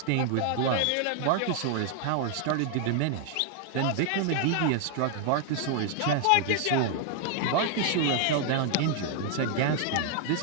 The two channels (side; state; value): both; different; correlation 0.00